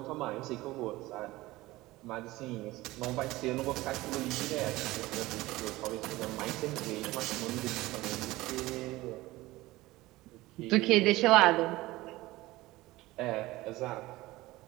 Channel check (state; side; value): quieter; left; 18.8 dB